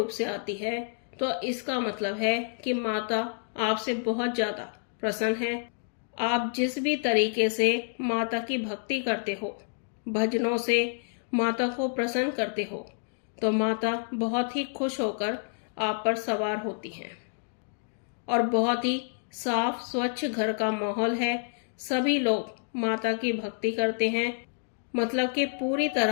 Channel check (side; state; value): right; silent; 59 dB below the other